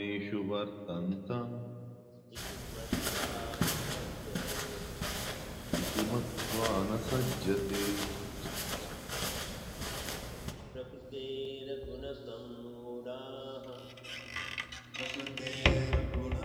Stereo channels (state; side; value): identical; both; correlation 1.00